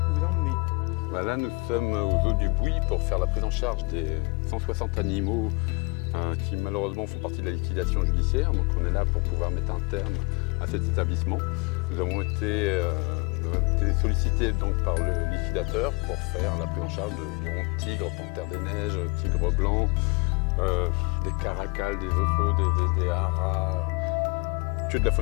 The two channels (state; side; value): quieter; right; 28.3 dB